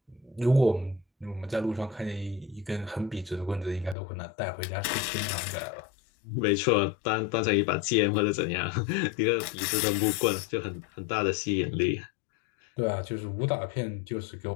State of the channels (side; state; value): right; drops out; at 4.0 s